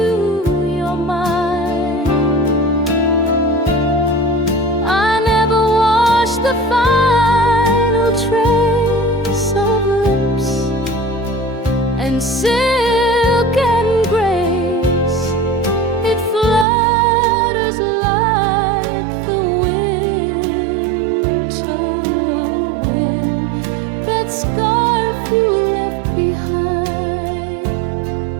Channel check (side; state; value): left; drops out; at 16.7 s